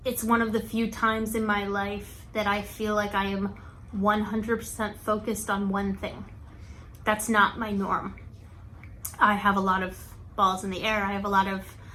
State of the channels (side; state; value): both; identical; correlation 1.00